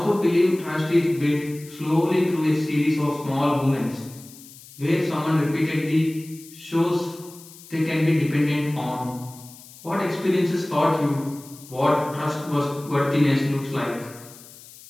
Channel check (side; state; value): left; noise; hiss, 20 dB below the sound